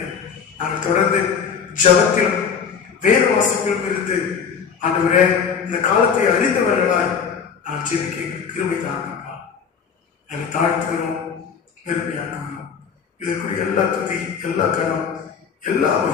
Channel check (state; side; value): quieter; right; 6.7 dB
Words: நாங்கள் தொடர்ந்து ஜபத்திலும் வேத வாசிப்பிலும் இருந்து ஆண்டவரே இந்த காலத்தை அறிந்தவர்களாய் நான் ஜெபிக்க கிருபை தாங்கப்பா. நாங்கள் தாழ்த்துகிறோம், பெருமையாக்குகிறோம். இதற்குரிய எல்லா துதி, எல்லா கரம், எல்லா